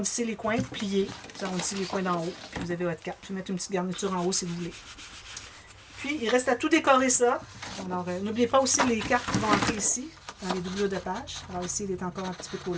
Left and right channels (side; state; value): both; identical; correlation 1.00